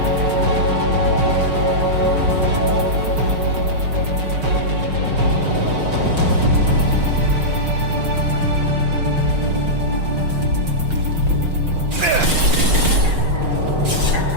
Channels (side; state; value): left; late; 5.9 ms